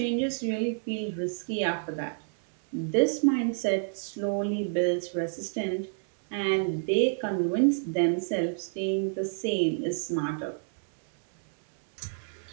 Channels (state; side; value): silent; left; 59 dB below the other